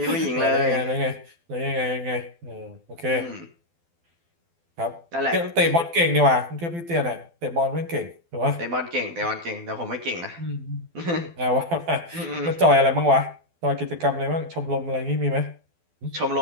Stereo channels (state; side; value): late; left; 12 ms